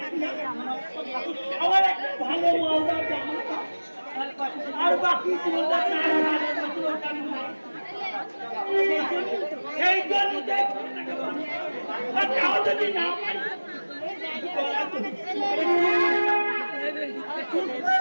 আমার একটা ভালো মালদার জামা আর বাকি সেই জন্য যদি না পারি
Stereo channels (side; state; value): both; inverted; correlation -1.00